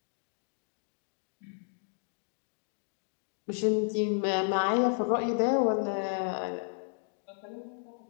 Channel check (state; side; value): silent; right; 56 dB below the other